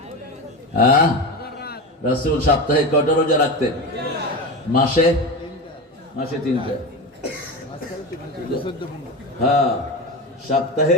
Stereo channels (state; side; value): normal; both; correlation 0.22